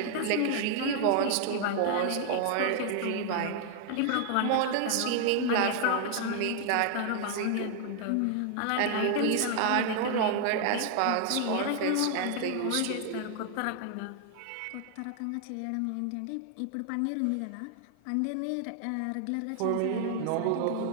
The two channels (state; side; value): different; both; correlation 0.00